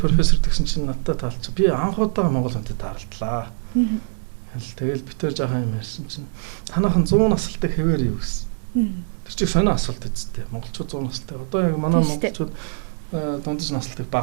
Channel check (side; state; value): left; silent; digital silence